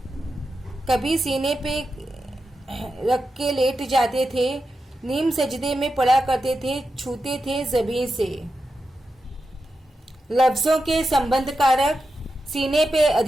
कभी सीने पे रख के लेट जाते थे, नीम सजदे में पढ़ा करते थे, छूते थे जमीन से। लफ्जों के संबंध कारक, सीने पे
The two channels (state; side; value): normal; both; correlation 0.89